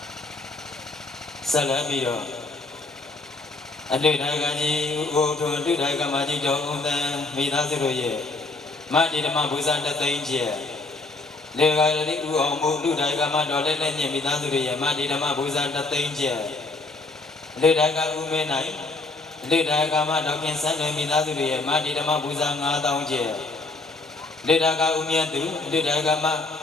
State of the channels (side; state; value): right; quieter; 3.4 dB